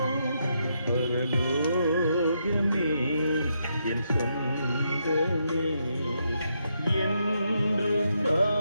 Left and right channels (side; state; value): both; inverted; correlation -0.80